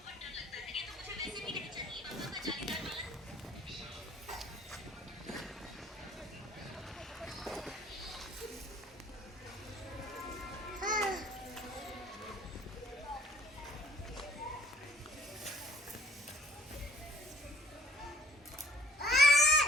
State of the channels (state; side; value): normal; both; correlation 0.57